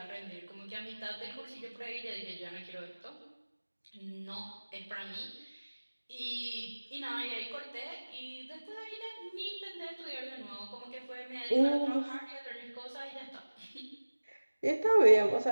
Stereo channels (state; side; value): inverted; both; correlation -1.00